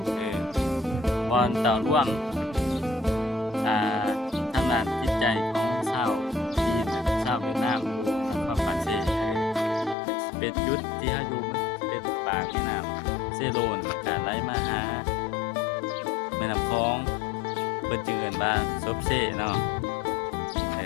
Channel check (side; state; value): right; drops out; at 10.0 s